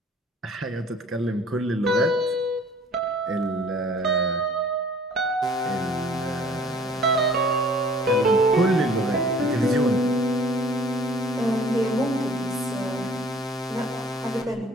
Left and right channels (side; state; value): both; normal; correlation 0.52